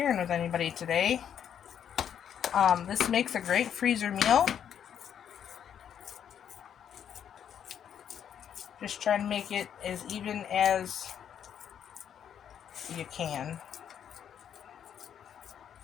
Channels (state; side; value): quieter; right; 8.9 dB